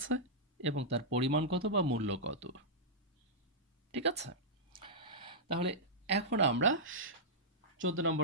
এবং তার পরিমাণ কত বা মূল্য কত। ঠিক আছে? তাহলে এখন আমরা 14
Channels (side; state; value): both; normal; correlation -0.11